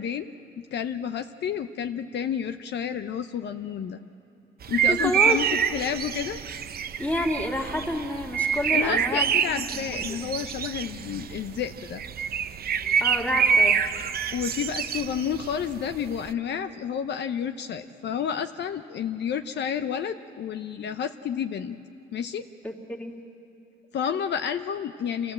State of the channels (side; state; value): both; normal; correlation 0.39